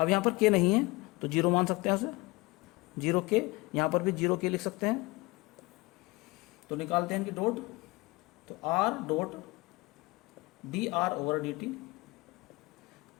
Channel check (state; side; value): quieter; right; 23.2 dB